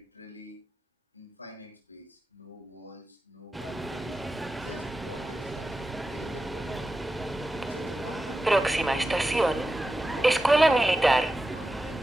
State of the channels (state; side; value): normal; both; correlation 0.92